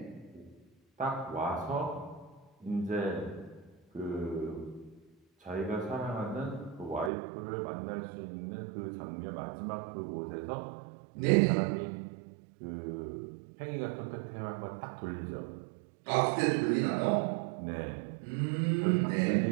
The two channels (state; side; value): drops out; left; at 7.1 s